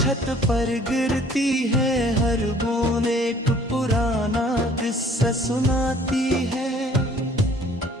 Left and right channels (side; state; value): both; normal; correlation 0.56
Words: पर गिरती है, हर बूंद एक पुराना किस्सा सुनाती है।